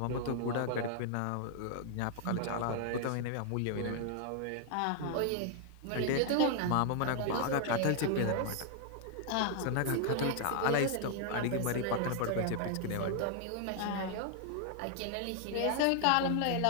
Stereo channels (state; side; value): different; both; correlation 0.00